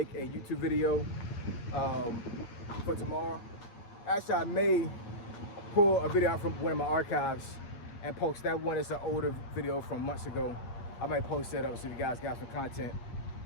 a YouTube video for tomorrow. Actually, I may pull a video out from one of my archives and post that one. It's an older video from months ago. I might post that up so you guys got some content.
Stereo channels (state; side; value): late; right; 8.9 ms